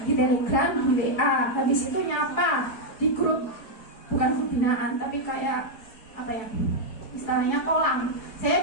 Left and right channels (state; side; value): late; right; 4.9 ms